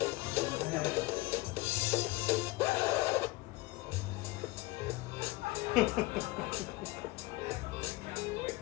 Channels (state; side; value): quieter; right; 21.0 dB